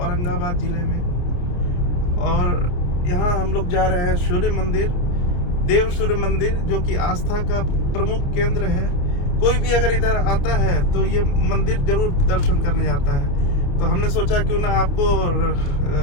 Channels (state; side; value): late; right; 28 ms